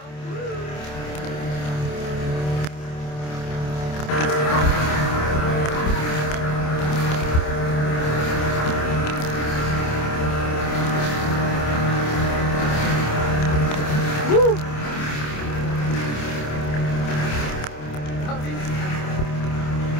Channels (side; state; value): right; late; 27 ms